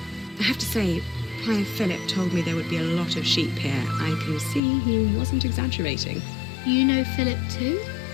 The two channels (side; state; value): right; drops out; at 4.6 s